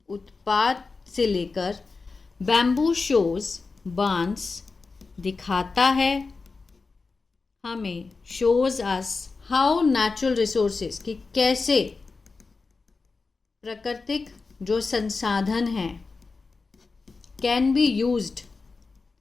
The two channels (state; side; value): quieter; right; 4.2 dB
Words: उत्पाद से लेकर बैम्बू शोज, बांस दिखाता है हमें, shows us how natural resources, कि कैसे प्राकृतिक जो संसाधन हैं कैन बी यूज्ड,